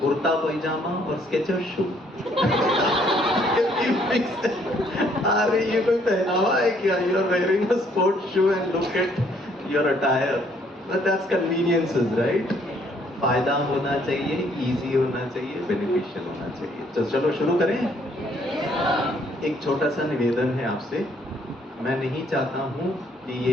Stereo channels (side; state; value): both; normal; correlation 0.65